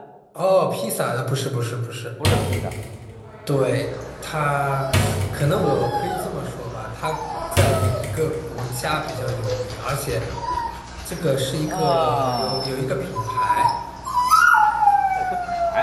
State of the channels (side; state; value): both; identical; correlation 1.00